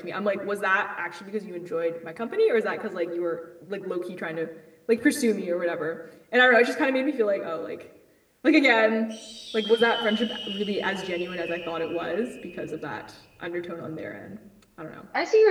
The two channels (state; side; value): identical; both; correlation 1.00